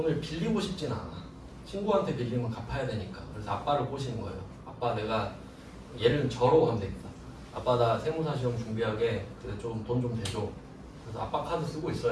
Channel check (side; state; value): both; identical; correlation 1.00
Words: 빌리고 싶진 않아. 친구한테 빌리면 갚아야 되니까. 그래서 아빠를 꼬시는 거예요. 아빠 내가 얘를 저로 하면 되겠다. 아빠 나 세무사 시험 준비하게 좀 돈 좀 대줘. 그래서 아빠 카드 쓰고